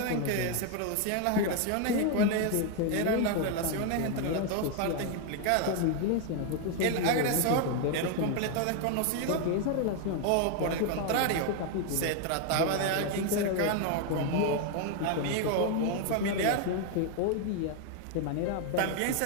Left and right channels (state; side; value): different; both; correlation 0.01